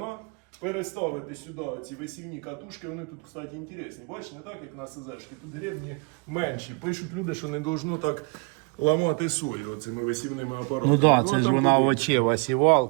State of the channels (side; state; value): left; quieter; 32.0 dB